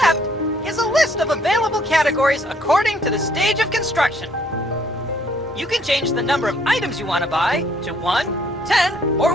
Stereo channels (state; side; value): normal; both; correlation 0.64